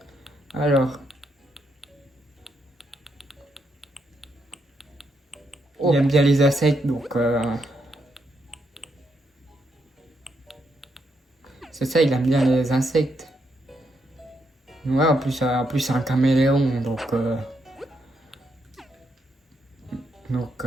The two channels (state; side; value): normal; both; correlation 0.79